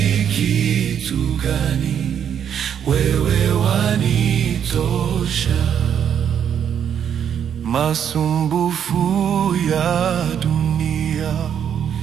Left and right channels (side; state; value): left; quieter; 8.7 dB